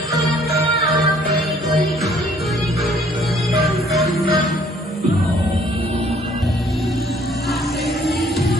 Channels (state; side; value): normal; both; correlation 0.60